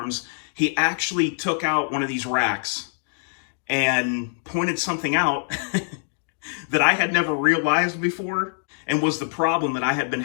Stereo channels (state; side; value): silent; right; digital silence